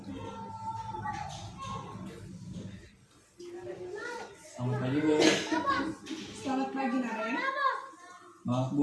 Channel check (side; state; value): both; identical; correlation 1.00